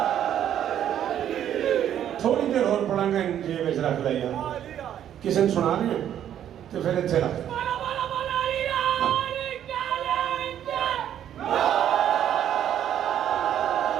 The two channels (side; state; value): left; quieter; 10.4 dB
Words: थोड़ी देर और पढ़ांगा, जेब में रख लिया, किसी ने सुना रहे हैं तो फिर इतने रख।